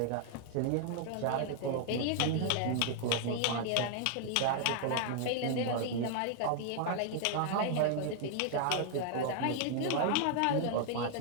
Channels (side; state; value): both; different; correlation 0.00